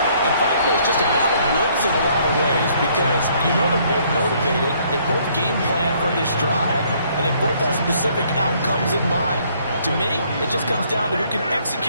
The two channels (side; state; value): both; inverted; correlation -0.65